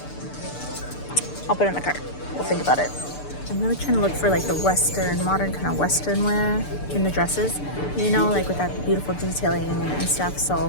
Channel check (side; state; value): right; late; 6.8 ms